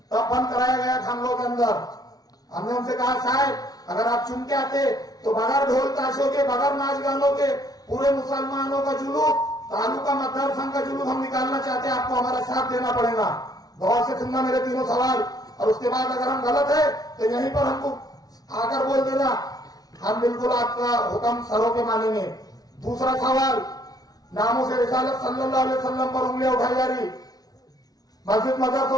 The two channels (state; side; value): late; right; 0.18 ms